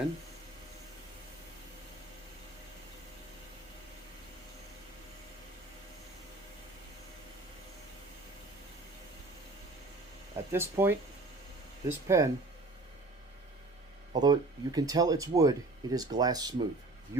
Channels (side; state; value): left; quieter; 3.0 dB